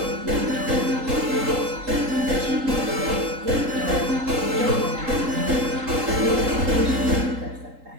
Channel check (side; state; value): left; late; 3.8 ms